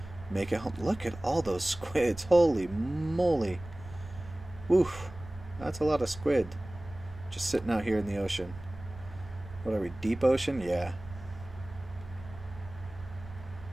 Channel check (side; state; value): right; noise; rumble, 16 dB below the sound